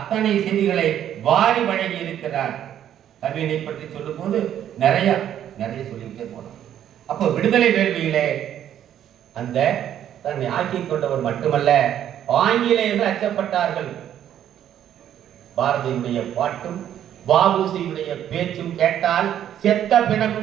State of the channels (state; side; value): quieter; left; 10.5 dB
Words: செய்திகளை வாரி வழங்கி இருக்கிறார். கவிதை பற்றி சொல்லும் போது நிறைய சொல்லிக்கிட்டே போனோம். அப்போ விடுதலை வேள்வியிலே அந்த தன்னை ஆக்கிக் கொண்டவர் மட்டுமல்ல, ஆங்கிலேயர்கள் அச்சப்பட்டார்கள். பாரதியுடைய பாட்டும் வ.உ.சியுடைய பேச்சும் கேட்டால் செத்த